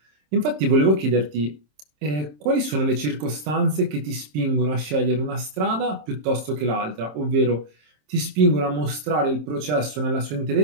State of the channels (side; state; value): left; late; 27 ms